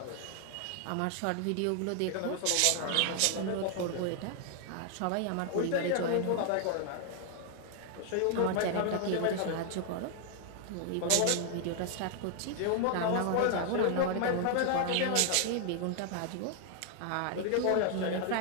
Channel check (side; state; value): both; different; correlation 0.00